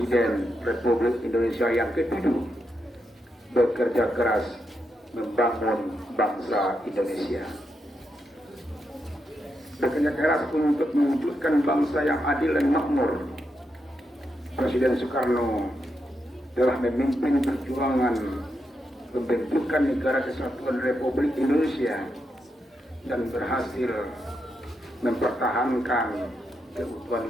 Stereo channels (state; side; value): normal; both; correlation 0.84